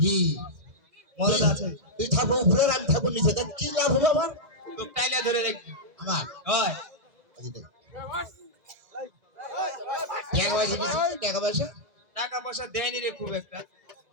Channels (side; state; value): left; late; 2.0 ms